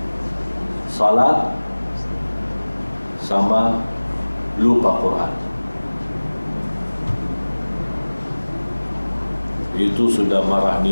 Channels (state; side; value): inverted; both; correlation -1.00